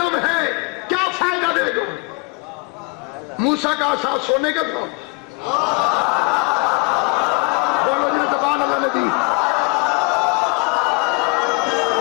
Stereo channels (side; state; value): right; quieter; 30.2 dB